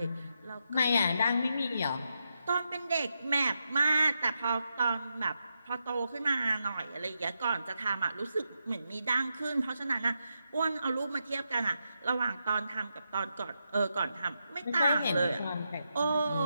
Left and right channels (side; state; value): both; inverted; correlation -0.85